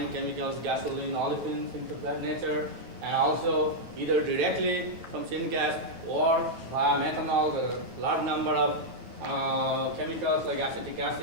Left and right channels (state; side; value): late; left; 9.1 ms